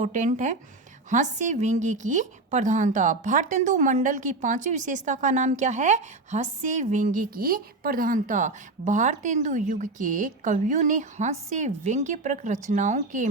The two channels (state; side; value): quieter; left; 3.2 dB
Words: है, हास्य व्यंग्य की प्रधानता। भारतेंदु मंडल की 5वीं विशेषता का नाम क्या है? हास्य व्यंग्य की प्रधानता। भारतेंदु युग के कवियों ने हास्य व्यंग्यप्रक रचनाओं के